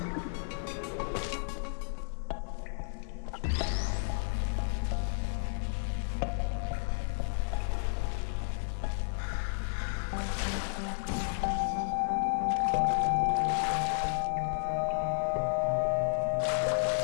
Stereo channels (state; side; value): silent; right; 56 dB below the other